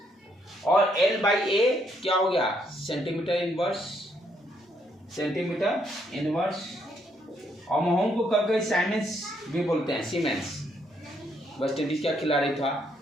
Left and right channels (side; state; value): both; normal; correlation 0.73